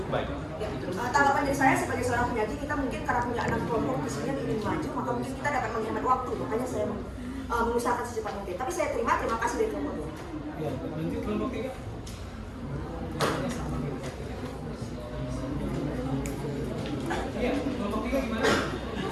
baik. Ya, tanggapan dari saya sebagai seorang penyaji, kita mungkin karena punya 6 kelompok di sini yang ingin maju, maka mungkin kita dapat menghemat waktu. Makanya saya mengusahakan secepat mungkin. Tapi saya terima kasih dari kelompok 2. Ya, lanjut kelompok 3. Iya, kelompok 3 gimana?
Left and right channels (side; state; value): both; identical; correlation 1.00